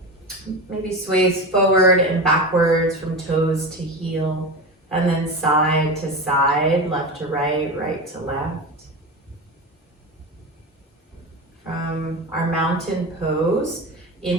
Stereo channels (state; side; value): normal; both; correlation 0.24